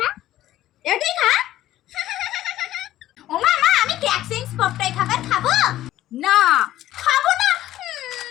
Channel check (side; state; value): right; quieter; 14.0 dB